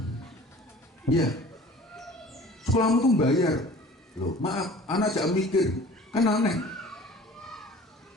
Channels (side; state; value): both; normal; correlation 0.46